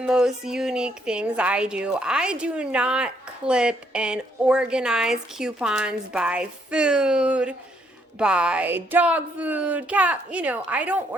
unique things I do. I do not clip and organize coupons by food, by dog food, cat, I don't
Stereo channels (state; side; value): normal; both; correlation 0.71